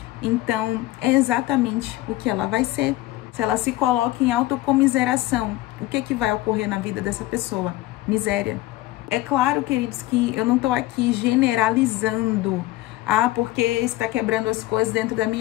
então é exatamente o que ela vai ser. Se ela se coloca em autocomiseração, o que vai ocorrer na vida dessa pessoa? Miséria. É claro, queridos, que eu não estou aqui generalizando. Porque está quebrando as coisas dentro da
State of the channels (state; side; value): quieter; right; 17.1 dB